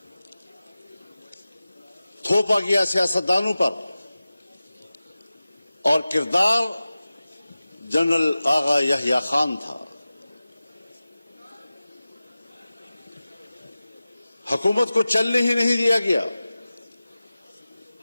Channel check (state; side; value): inverted; both; correlation -0.96